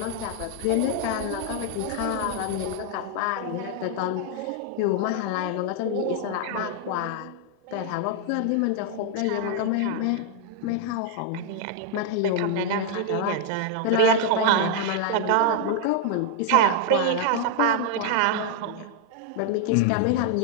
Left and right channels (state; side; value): different; both; correlation 0.00